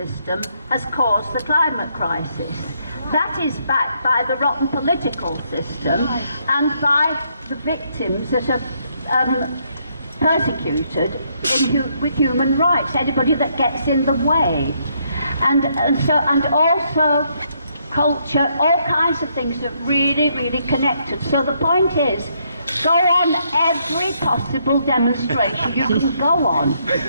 has caused the climate crisis. That is backed by the rotten political system and by the victims that are persecuted with human rights, anybody that gets in the way. And also culture, all kinds of things that really, really connected. So the point is, go on every possible demonstration you can go on,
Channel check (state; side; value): inverted; both; correlation -0.73